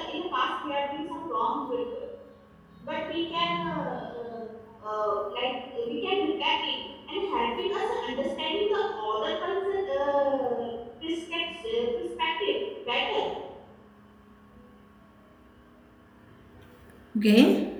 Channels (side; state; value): both; identical; correlation 1.00